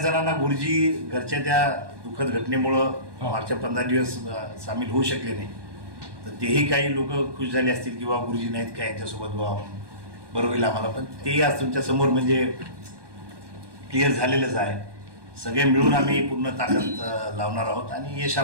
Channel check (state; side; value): late; left; 1.2 ms